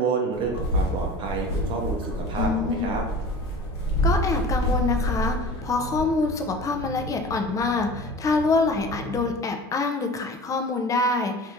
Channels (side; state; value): both; normal; correlation 0.39